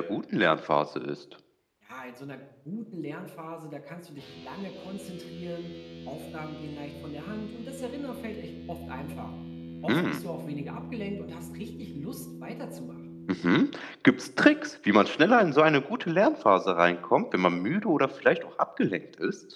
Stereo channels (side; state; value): both; identical; correlation 1.00